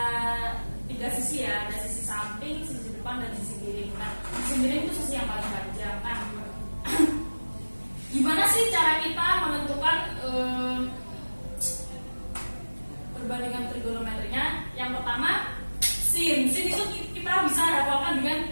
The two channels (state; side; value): inverted; both; correlation -1.00